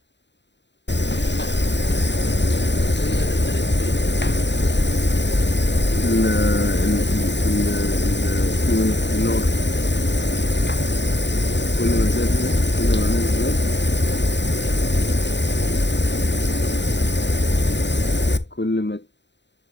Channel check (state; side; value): late; right; 0.52 ms